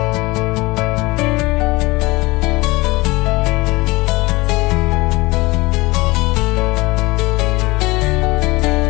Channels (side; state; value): right; quieter; 22.3 dB